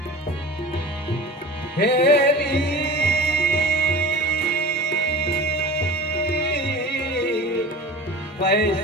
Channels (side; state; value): both; normal; correlation 0.36